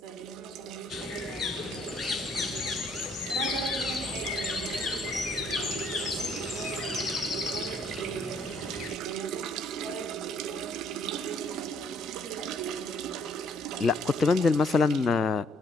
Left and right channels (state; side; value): normal; both; correlation 0.65